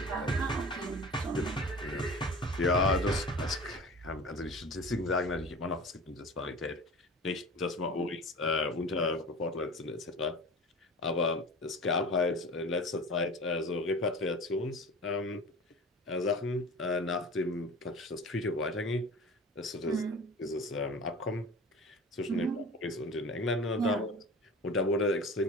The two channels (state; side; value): normal; both; correlation 0.37